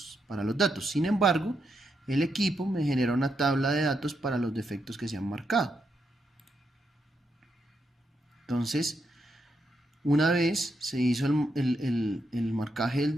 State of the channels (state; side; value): normal; both; correlation 0.82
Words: datos. Sin embargo, el equipo me genera una tabla de datos para los defectos que se han marcado. Entonces, una vez se hizo el marcaje del